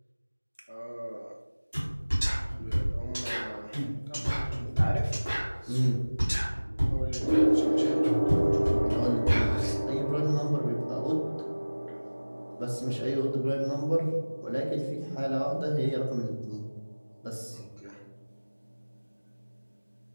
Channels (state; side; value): inverted; both; correlation -1.00